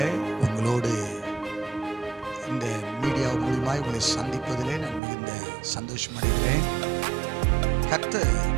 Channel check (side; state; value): left; drops out; at 5.0 s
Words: உங்களோடு இந்த மீடியா மூலமாய் உங்களை சந்திப்பதிலே நான் மிகுந்த சந்தோஷம் அடைகிறேன். கர்த்தர்